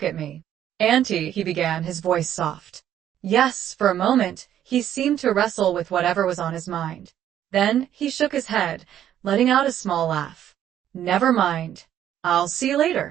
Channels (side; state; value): left; quieter; 10.8 dB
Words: at me. "Auntie," he began, his voice soft. Yes, for a moment, he seemed to wrestle with whatever was on his mind. Then he shook his head, letting out a small laugh. "Never mind." I'll see you